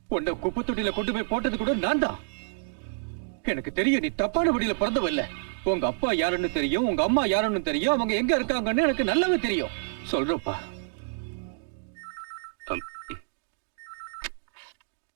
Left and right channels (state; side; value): silent; left; digital silence